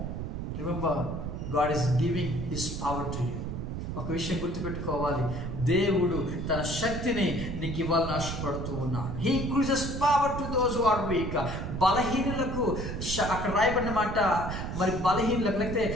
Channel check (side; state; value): right; noise; rumble, 5 dB below the sound